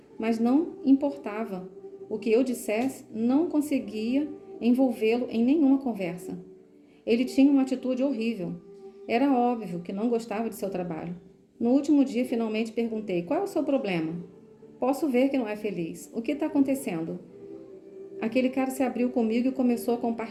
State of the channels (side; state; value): both; identical; correlation 1.00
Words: mas não importava o que eu dissesse, não conseguia envolvê-lo em nenhuma conversa. Ele tinha uma atitude horrível. Era óbvio que não gostava de seu trabalho. No último dia, finalmente perguntei: qual é o seu problema? Posso ver que não é feliz. O que está acontecendo? Aquele cara se abriu comigo e começou a